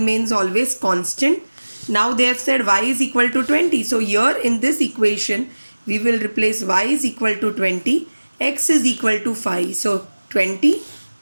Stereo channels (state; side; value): inverted; both; correlation -1.00